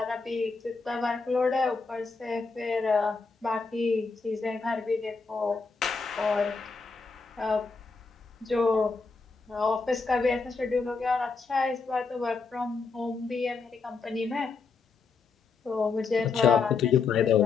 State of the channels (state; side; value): quieter; right; 4.6 dB